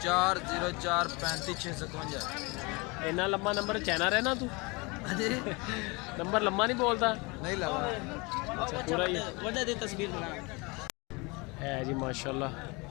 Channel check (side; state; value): right; quieter; 27.3 dB